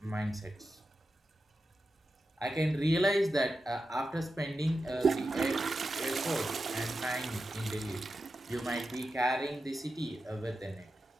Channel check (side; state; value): both; normal; correlation 0.90